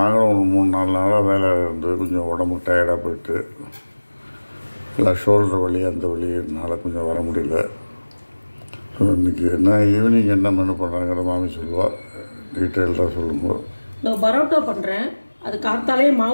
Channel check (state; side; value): inverted; both; correlation -1.00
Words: ஒரு 3-4 நாளாக வேலை இருந்து கொஞ்சம் உடம்பு டயர்டாக போயிட்டு எல்லாம் ஷோல்டர் வலி அந்த வலினால கொஞ்சம் வர முடியல. ஸோ இன்றைக்கி என்ன ஈவினிங் என்ன மெனு பண்ணுறாங்கிற மாமி சொல்லுவாள். டீட்டெயில்டாக சொல்லும்போது நான் பரோட்டா பண்ணுறேன். அது காத்தாலே